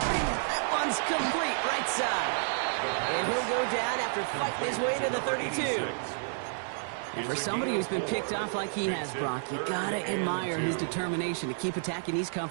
That one's complete right side. And he'll go down after fighting his way to the 32. And for somebody who's been picked off like he has, Brock, you gotta admire his determination to keep attacking these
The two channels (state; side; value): silent; left; 58 dB below the other